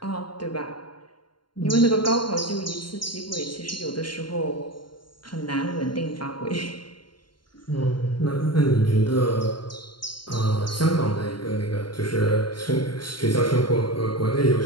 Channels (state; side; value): late; right; 0.72 ms